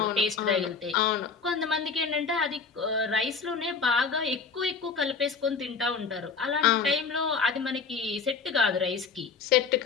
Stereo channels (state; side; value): quieter; right; 5.2 dB